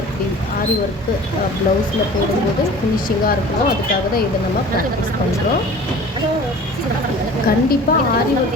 ப்ளவுஸில் போடும்போது ஃபினிஷிங்காக இருக்கணும். அதுக்காக தான் இதை நம்ம ப்ராக்டிஸ் பண்ணுறோம். கண்டிப்பாக ஆரி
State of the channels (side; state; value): both; normal; correlation 0.43